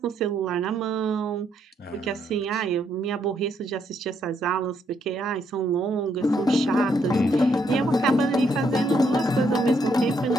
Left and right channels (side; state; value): both; normal; correlation 0.74